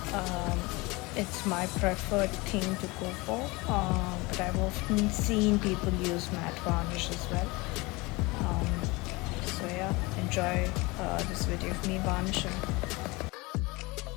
It's my preferred thing to go for, but I've often seen people use matte varnish as well. Um, so yeah, enjoy this video of me varnishing.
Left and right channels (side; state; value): right; quieter; 24.1 dB